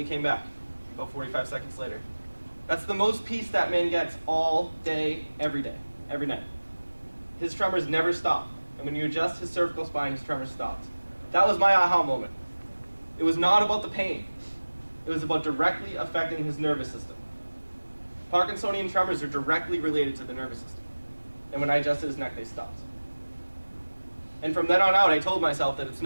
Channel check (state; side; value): inverted; both; correlation -1.00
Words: came back, about 45 seconds later. That's the most peace that man gets all day, every night. His tremors never stop. And when you adjust his cervical spine, his tremors stopped. That was my aha moment. It was not about the pain. It was about directly affecting his nervous system. Parkinsonian tremors are directly related to the nervous system. And when I adjusted his neck, they stopped. And from then on out, I told myself that it's